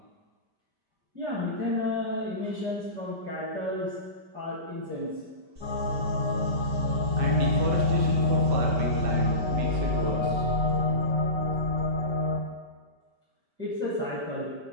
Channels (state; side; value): late; left; 5.1 ms